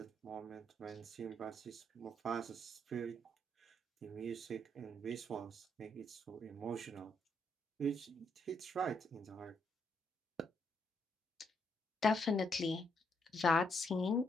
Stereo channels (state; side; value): normal; both; correlation 0.75